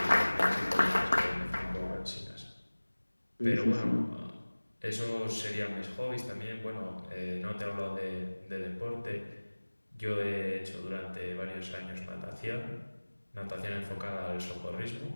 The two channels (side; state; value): both; inverted; correlation -1.00